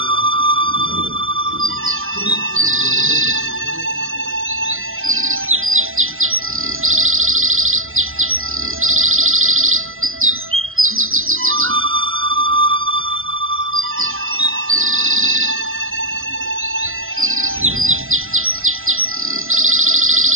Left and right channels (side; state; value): left; late; 0.60 ms